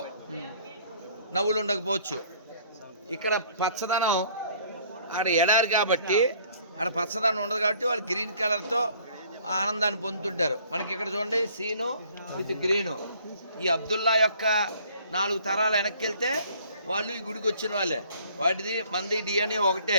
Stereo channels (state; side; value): inverted; both; correlation -0.57